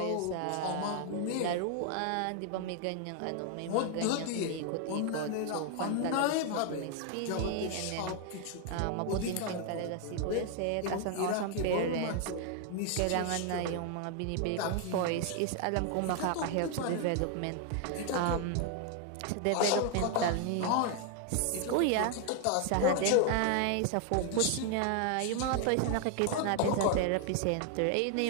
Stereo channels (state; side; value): different; both; correlation 0.00